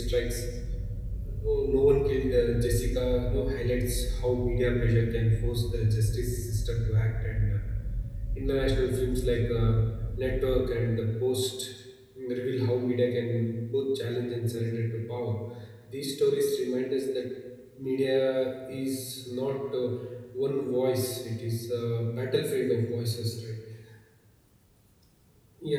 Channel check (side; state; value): both; identical; correlation 1.00